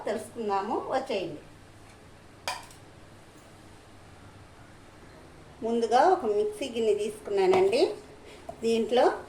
తెలుసుకుందాము. వచ్చేయండి. ముందుగా ఒక మిక్సీ గిన్నె తీసుకున్నానండి. దీంట్లో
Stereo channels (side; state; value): both; identical; correlation 1.00